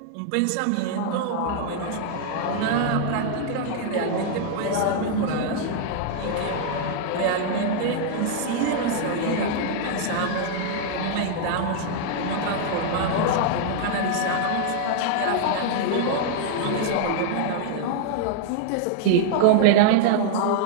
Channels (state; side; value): different; both; correlation -0.01